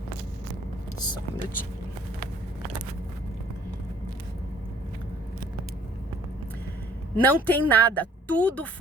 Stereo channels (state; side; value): normal; both; correlation 0.57